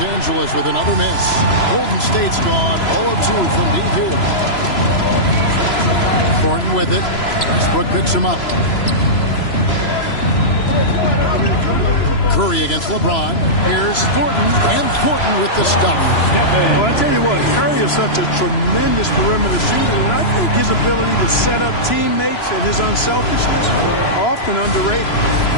Angeles with another miss. Golden State's gone 0 of 2 from deep here. Thornton with it. Westbrook picks him up. Curry against LeBron. Here's Thornton, and Thornton with the stop. Well, I tell you what, Curry is such a tremendous perimeter shooter, and I think his ability to set up teammates and his unselfishness are often underrated.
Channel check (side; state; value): right; late; 3.0 ms